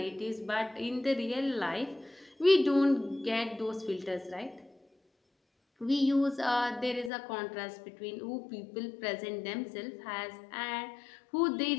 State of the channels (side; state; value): right; drops out; at 7.1 s